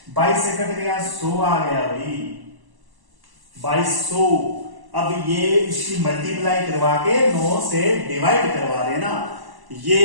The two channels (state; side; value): late; left; 1.0 ms